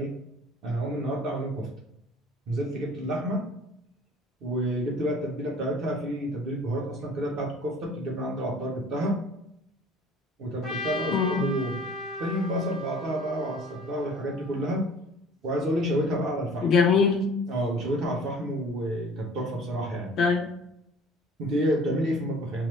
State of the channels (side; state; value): both; normal; correlation 0.49